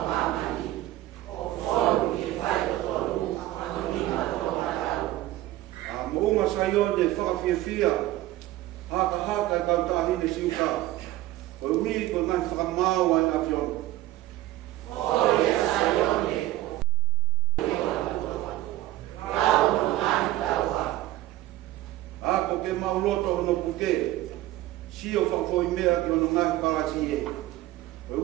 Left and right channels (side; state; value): left; quieter; 15.7 dB